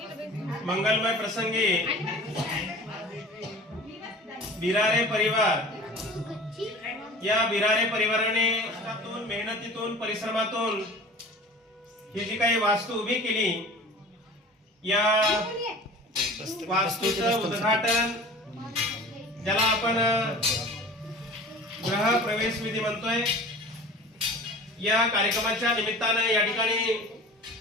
मंगलमय प्रसंगी बिरारे परिवार या बिरारे परिवाराने मेहनतीतून परिश्रमातून ही जी काही वास्तू उभी केली या वास्तूचं उद्घाटन ज्याला आपण गृह प्रवेश विधी म्हणतोय या कार्यक्रमाच्या निमित्ताने या ठिकाणी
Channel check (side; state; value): both; normal; correlation 0.40